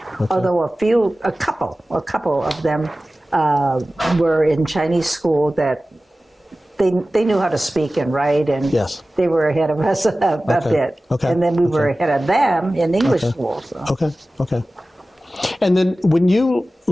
although a couple of them were in Chinese school that they knew how to speak and write, and Yes. they were ahead of us a bit. Okay. And then we were ahead of them in English school. So. Okay. And then when you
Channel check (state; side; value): normal; both; correlation 0.96